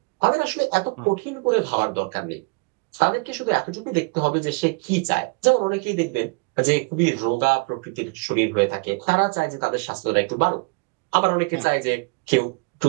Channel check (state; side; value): quieter; left; 31.6 dB